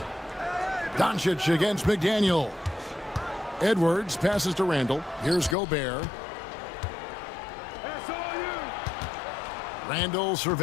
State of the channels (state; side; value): drops out; right; at 5.6 s